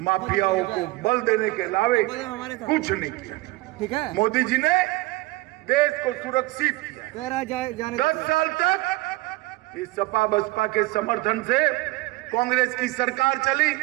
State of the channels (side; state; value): left; quieter; 20.6 dB